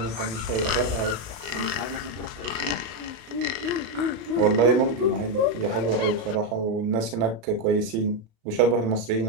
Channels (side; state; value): left; late; 35 ms